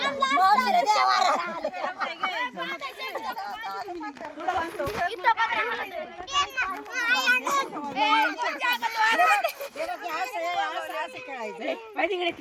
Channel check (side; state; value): both; identical; correlation 1.00